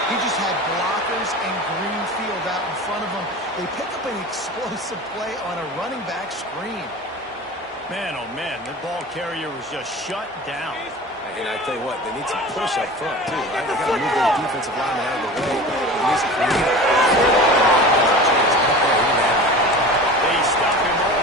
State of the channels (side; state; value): both; normal; correlation 0.35